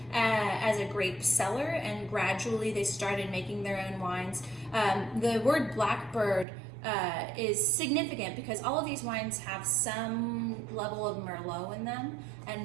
as a grape cellar, and gradually they started making their own wines. The word Blackbird is significant because all of these wines have some level of Merlot in them,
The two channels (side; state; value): left; drops out; at 6.5 s